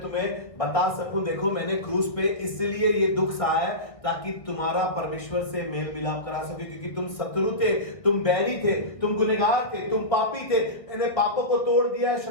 तुम्हें बता सकूं, देखो मैंने क्रूस पे इसलिए ये दुख सहा है ताकि तुम्हारा परमेश्वर से मेल मिलाप करा सके, क्योंकि तुम शत्रु थे, तुम बैरी थे, तुम गुनहगार थे, तुम पापी थे। मैंने पापों को तोड़ दिया है,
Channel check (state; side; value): late; right; 1.6 ms